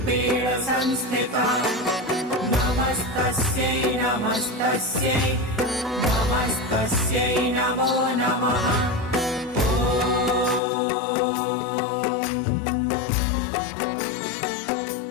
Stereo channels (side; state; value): right; drops out; at 10.6 s